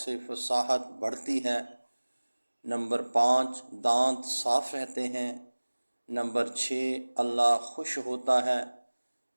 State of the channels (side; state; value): both; inverted; correlation -1.00